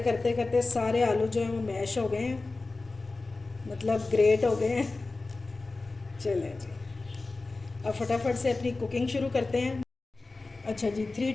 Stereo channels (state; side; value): quieter; right; 3.5 dB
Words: करते करते सारे आलू जो हैं वो मैश हो गए हैं, मतलब ग्रेट हो गए हैं। चलें जी अब फटाफट से अपनी कुकिंग शुरू करते हैं। अच्छा जी 3